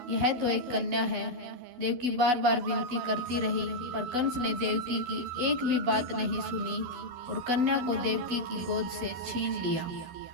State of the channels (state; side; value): late; left; 12 ms